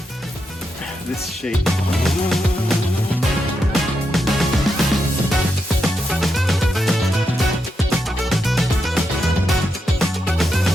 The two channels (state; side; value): normal; both; correlation 0.84